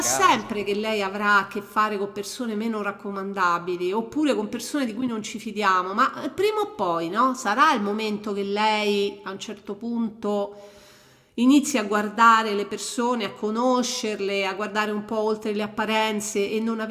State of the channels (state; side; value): identical; both; correlation 1.00